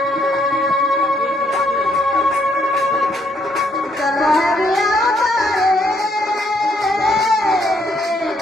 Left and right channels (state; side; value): normal; both; correlation 0.70